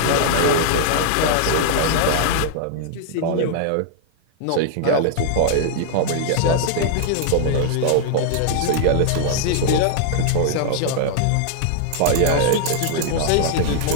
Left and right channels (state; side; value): different; both; correlation -0.01